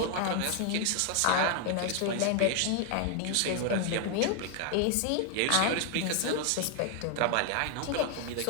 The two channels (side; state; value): both; different; correlation 0.00